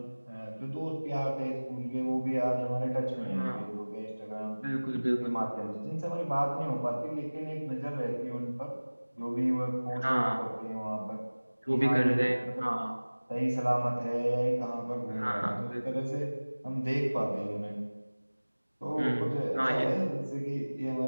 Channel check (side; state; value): both; inverted; correlation -1.00